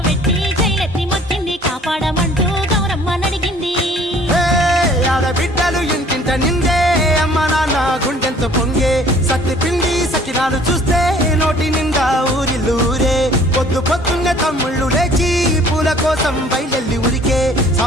పెట్టి జైలెత్తి మొక్కింది కాపాడమంటూ గౌరమ్మ నడిగింది ఆడబిడ్డలు ఇంటింట నిందే అమ్మ నాన్న గుండెంతో పొంగే సత్తి పిండి సకినాలు చూస్తే నోటి నిండా ఊరిల్లూరే పొద్దు పొద్దున్నే తమ్ముళ్ళు లేచి పూల కోసం బయలెల్లి ఉరికే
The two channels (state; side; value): normal; both; correlation 0.54